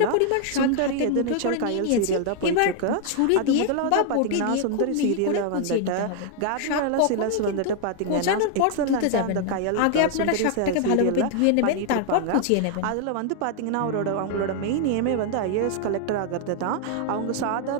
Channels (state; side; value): different; both; correlation 0.00